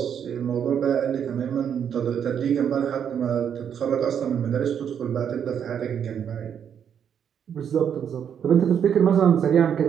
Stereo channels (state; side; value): quieter; left; 8.3 dB